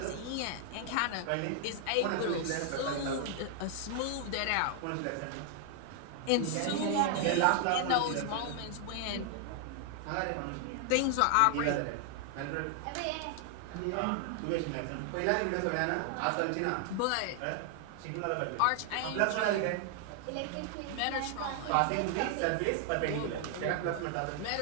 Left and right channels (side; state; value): both; different; correlation 0.00